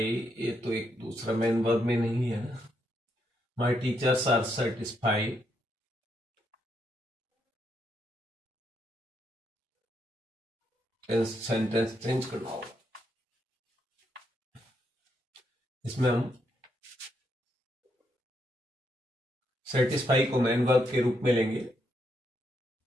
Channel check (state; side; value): normal; both; correlation 0.78